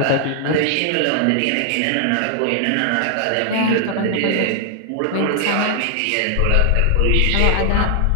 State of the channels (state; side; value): different; both; correlation 0.00